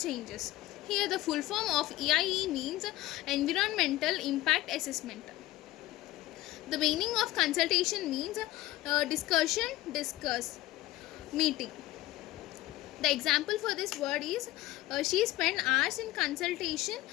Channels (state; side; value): quieter; right; 17.0 dB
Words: Here the full form of EIE means Environmental Impact Assessment. The meaning of consultation means discussion, discuss, meeting. The example for this word is she spent hours in consultation